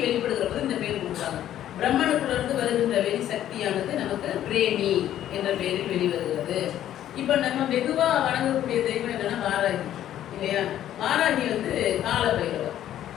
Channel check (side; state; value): right; quieter; 11.8 dB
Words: வெளிப்படுகிற போது இந்த பேர் கொடுத்தாங்க. பிரம்மனுக்குள்ளிருந்து வருகின்ற வெளி சக்தியானது நமக்கு பிரேமி என்ற பெயரில் வெளிவருகிறது. இப்போ நம்ம வெகுவாக வணங்கக்கூடிய தெய்வம் என்னன்னா வாராகி இல்லையா. வாராகி கால பைரவர்,